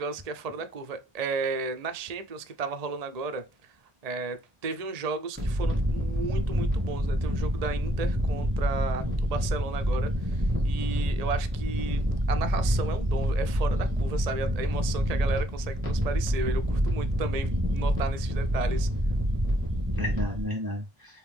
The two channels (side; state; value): left; late; 1.8 ms